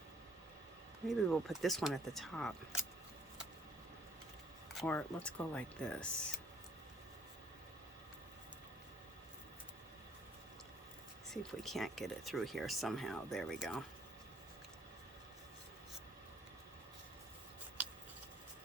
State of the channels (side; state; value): both; normal; correlation 0.61